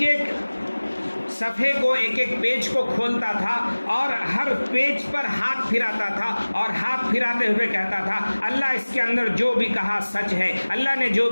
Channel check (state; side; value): inverted; both; correlation -1.00